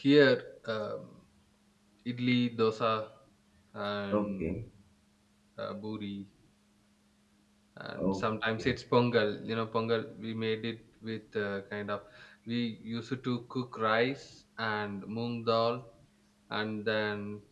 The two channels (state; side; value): identical; both; correlation 1.00